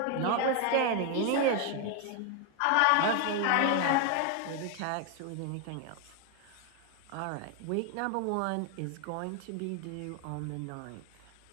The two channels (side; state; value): both; different; correlation 0.01